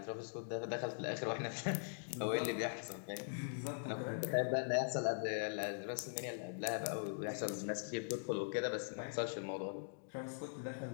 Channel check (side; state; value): right; silent; digital silence